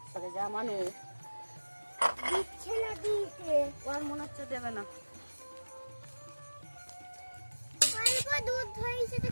সরে যা মানুষ। দিচ্ছে না দিতে, ওর মনে হচ্ছে দেবে না। অল্প দুধ হয়েছে তো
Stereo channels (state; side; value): inverted; both; correlation -1.00